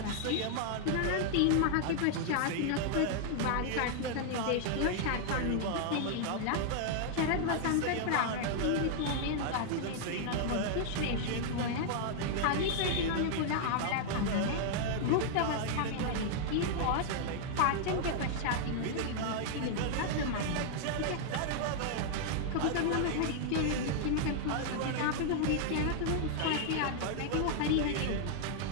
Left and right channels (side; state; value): both; different; correlation -0.01